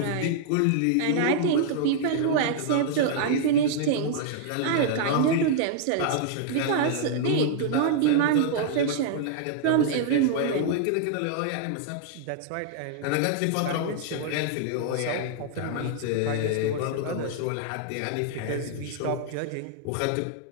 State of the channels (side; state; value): both; different; correlation -0.01